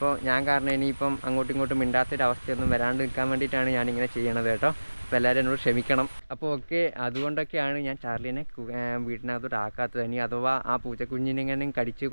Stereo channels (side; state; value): both; inverted; correlation -1.00